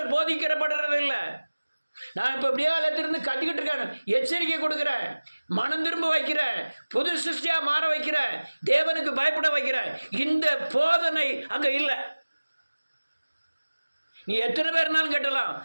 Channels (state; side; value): inverted; both; correlation -1.00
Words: போதிக்கிறப்படுறது இல்லை. நான் இப்போ இப்படியே இடத்திலிருந்து கத்திக்கிட்டு இருக்கேன், எச்சரிக்கை கொடுக்குறேன், மனம் திரும்ப வைக்கிறேன், புது சிருஷ்டியாக மாற வைக்கிறேன், தேவனுக்கு பயப்பட வைக்கிறேன். இந்த போதனை அங்கே இல்லை. நீ எத்தனை பேர்னாலும் கேட்டலாம்.